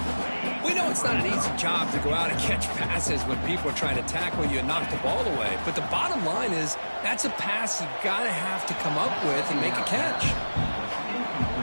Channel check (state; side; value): inverted; both; correlation -1.00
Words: We know it's not an easy job to go out and catch passes when people are trying to tackle you and knock the ball away. But the bottom line is that's a pass you got to have to come up with and make a catch.